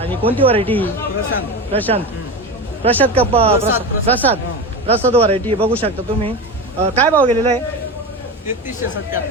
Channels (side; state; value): both; normal; correlation 0.23